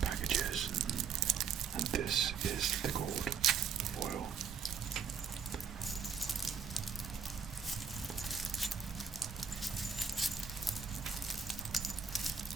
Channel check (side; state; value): left; quieter; 6.2 dB